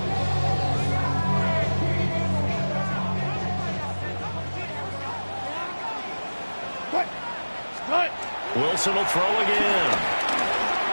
Wilson will throw again.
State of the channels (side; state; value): both; inverted; correlation -1.00